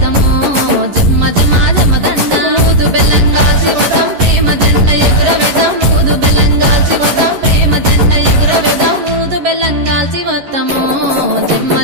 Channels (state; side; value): late; left; 11 ms